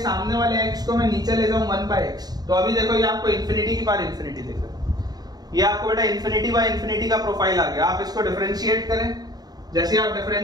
वाले x को मैं नीचे ले जाऊं 1/x, तो अभी देखो ये आपको इंफिनिटी की पावर इंफिनिटी दिख रहा है, ये आपको बेटा इंफिनिटी बाय इंफिनिटी का प्रोफाइल आ गया। आप इसको डिफरेंशिएट करें, जैसे आप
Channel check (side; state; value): left; late; 0.19 ms